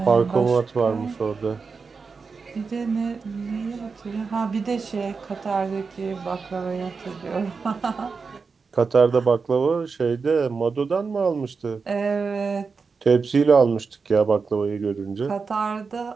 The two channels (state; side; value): quieter; left; 4.9 dB